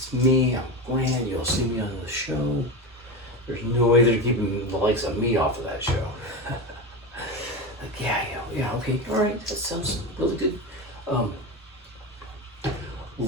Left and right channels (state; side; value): normal; both; correlation 0.20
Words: me, I'm Glenn, you'll see me on the show. There's no way they're keeping the likes of me off of that show. Like, yeah, okay, all right, that sounds really good.